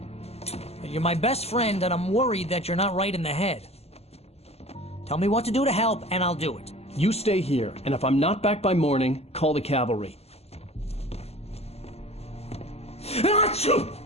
You're my best friend, and I'm worried that you're not right in the head. Tell me what to do to help, and I'll do it. You stay here, and if I'm not back by morning, call the cavalry.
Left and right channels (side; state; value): right; late; 0.30 ms